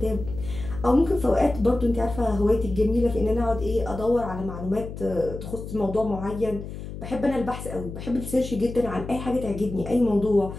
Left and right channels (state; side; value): noise; left; hum, 10 dB below the sound